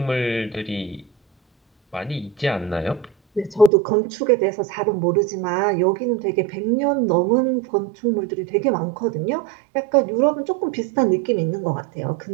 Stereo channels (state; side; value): drops out; left; at 3.7 s